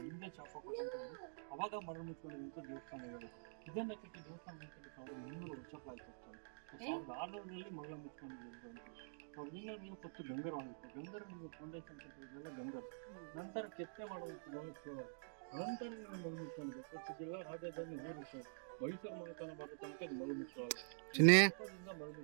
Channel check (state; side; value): silent; left; digital silence